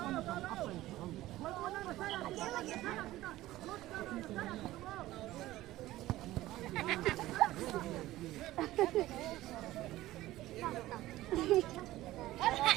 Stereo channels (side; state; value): left; quieter; 16.2 dB